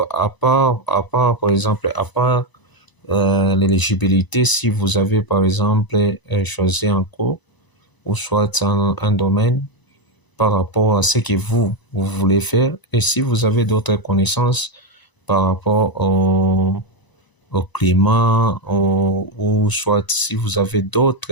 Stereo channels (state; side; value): late; right; 1.0 ms